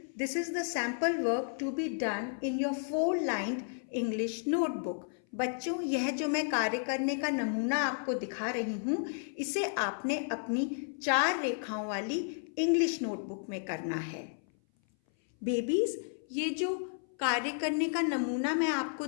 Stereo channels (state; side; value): silent; right; 56 dB below the other